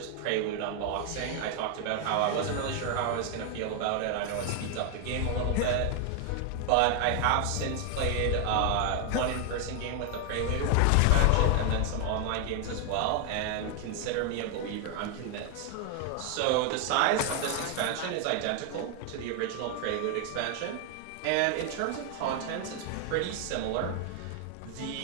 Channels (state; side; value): different; both; correlation 0.00